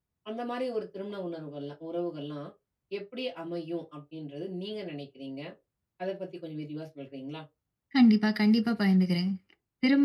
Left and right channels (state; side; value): identical; both; correlation 1.00